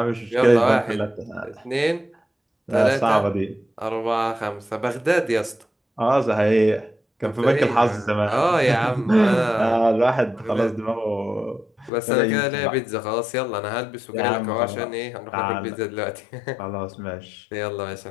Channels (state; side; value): drops out; right; at 11.9 s